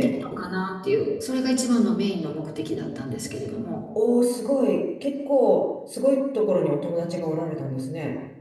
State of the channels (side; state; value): both; identical; correlation 1.00